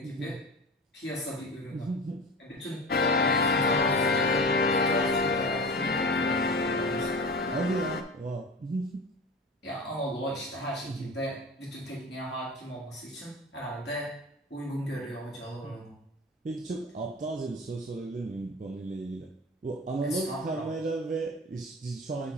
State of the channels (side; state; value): both; normal; correlation 0.33